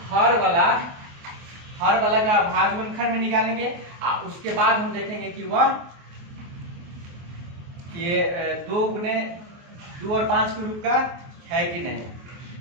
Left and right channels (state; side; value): late; left; 24 ms